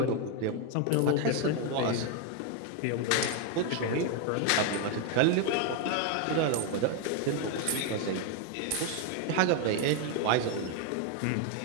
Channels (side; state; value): both; different; correlation 0.01